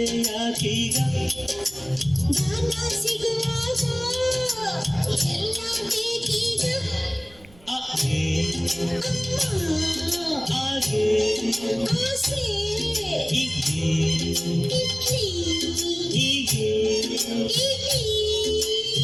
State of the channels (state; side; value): noise; right; rumble, 25 dB below the sound